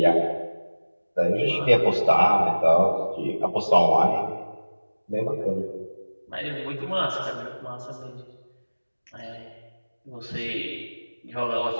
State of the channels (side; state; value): both; inverted; correlation -1.00